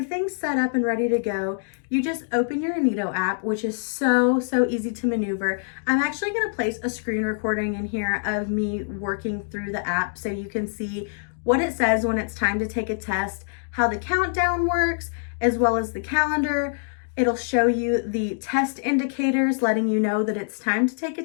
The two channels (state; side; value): silent; right; digital silence